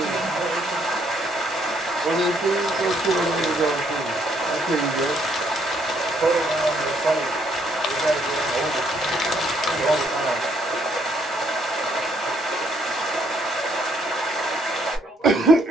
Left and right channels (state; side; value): normal; both; correlation 0.69